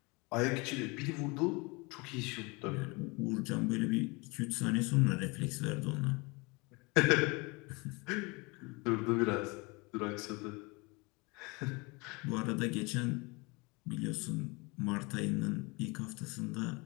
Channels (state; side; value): quieter; right; 27.3 dB